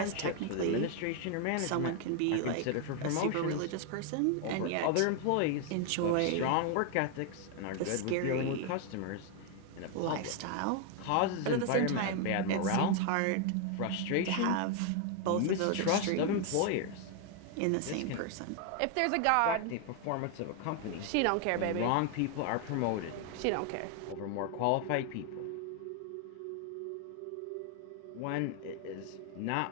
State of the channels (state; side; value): different; both; correlation 0.01